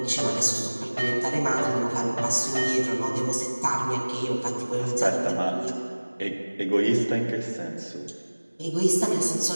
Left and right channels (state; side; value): inverted; both; correlation -1.00